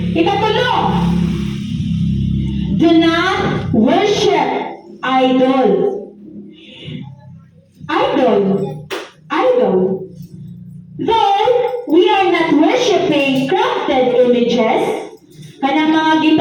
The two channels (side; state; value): both; identical; correlation 1.00